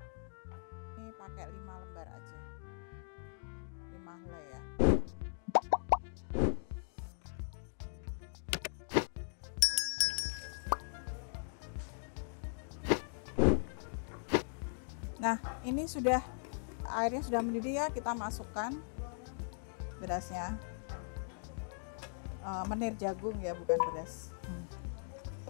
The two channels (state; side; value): silent; right; digital silence